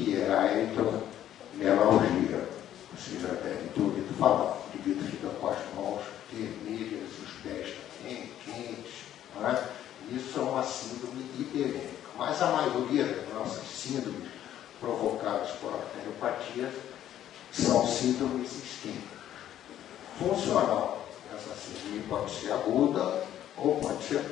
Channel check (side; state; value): right; quieter; 11.5 dB